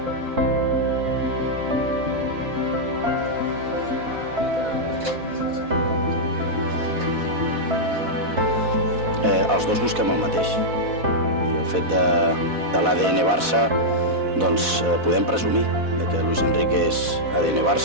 Els dos busquem el mateix. I el fet de l'ADN Barça, doncs podem presumir que Luis Enrique és ADN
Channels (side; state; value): left; late; 4.1 ms